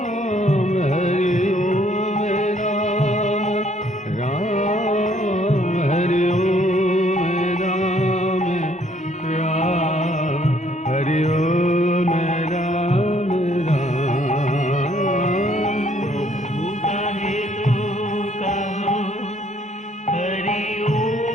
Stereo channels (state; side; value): normal; both; correlation 0.64